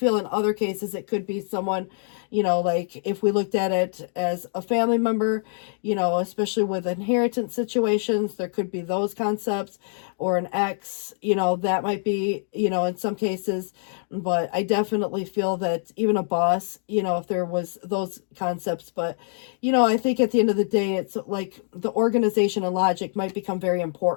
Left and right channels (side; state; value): right; silent; digital silence